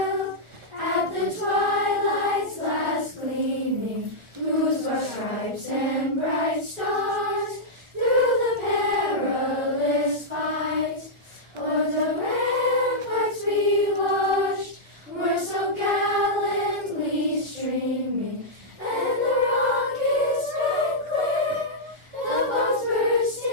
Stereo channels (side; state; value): left; late; 1.4 ms